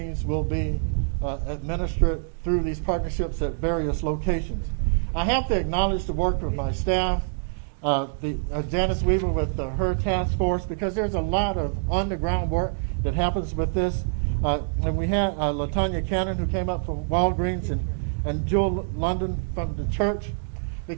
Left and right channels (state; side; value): silent; left; digital silence